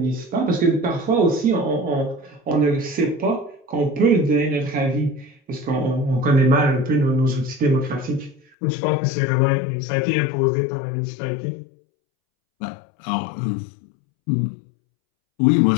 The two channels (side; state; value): right; drops out; at 8.4 s